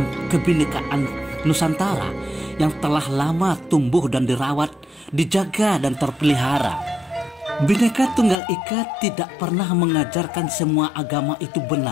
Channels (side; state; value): right; drops out; at 8.3 s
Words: kebinekaan Nusantara yang telah lama tumbuh dan dirawat, dijaga, dan terpelihara. Bhinneka Tunggal Ika tidak pernah mengajarkan semua agama itu